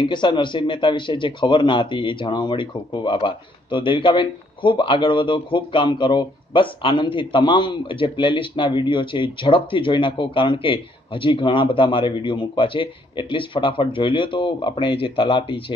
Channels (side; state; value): both; normal; correlation 0.68